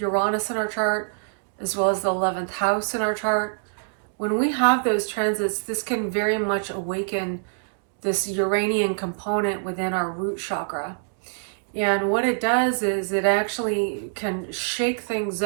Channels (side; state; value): left; silent; digital silence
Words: in our chart, as well as the 11th house in our chart, when we have those transits, this can very much awaken this Uranian component within our root chakra. And what it does is it actually can shake things